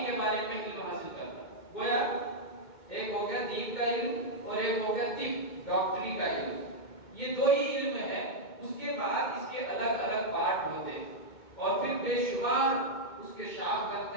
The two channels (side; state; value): right; late; 2.2 ms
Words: کے بارے میں علم حاصل کرنا۔ گویا ایک ہو گیا دین کا علم اور ایک ہو گیا طب، ڈاکٹری کا علم، یہ 2 ہی علم ہے، اس کے بعد اس کے الگ الگ پارٹ ہوتے ہیں اور پھر بے شمار اس کے شاخ